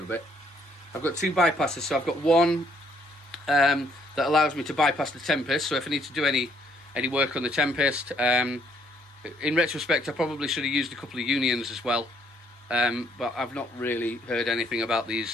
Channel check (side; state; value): both; normal; correlation 0.67